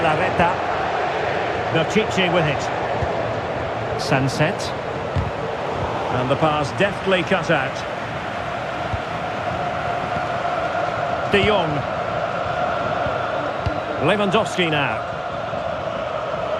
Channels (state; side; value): identical; both; correlation 1.00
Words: Berchiche with it. Sunset. And the pass deftly cut out. De Jong. Lewandowski now.